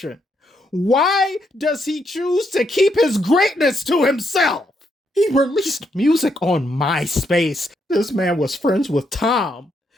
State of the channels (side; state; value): both; normal; correlation 0.77